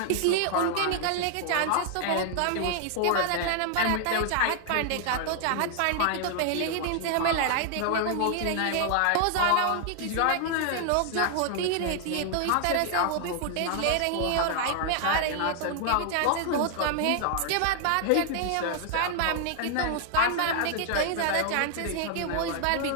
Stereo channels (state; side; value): different; both; correlation 0.00